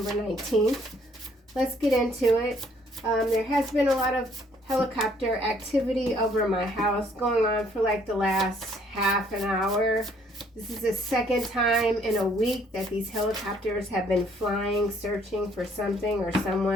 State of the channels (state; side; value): normal; both; correlation 0.64